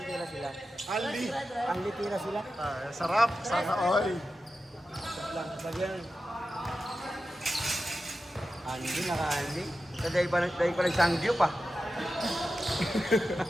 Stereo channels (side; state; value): both; normal; correlation 0.92